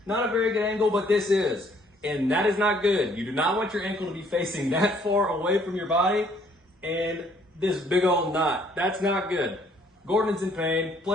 Not a very good angle, but this is. And that is not good. You do not want your ankle to be facing that far away from your body. And this big old knot. That's not good. Gordon's in pain.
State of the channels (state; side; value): normal; both; correlation 0.63